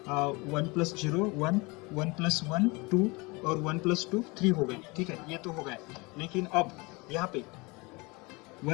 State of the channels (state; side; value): quieter; right; 26.1 dB